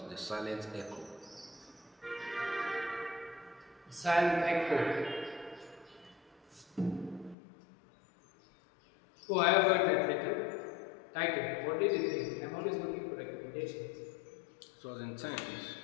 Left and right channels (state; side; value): drops out; right; at 7.4 s